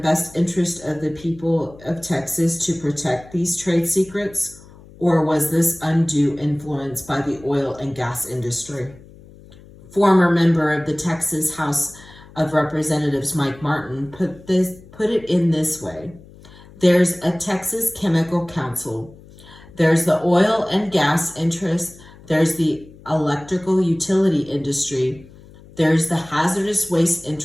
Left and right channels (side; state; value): left; noise; hum, 22 dB below the sound